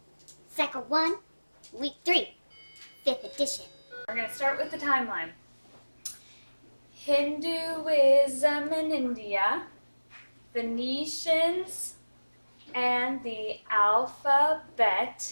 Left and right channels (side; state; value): both; inverted; correlation -1.00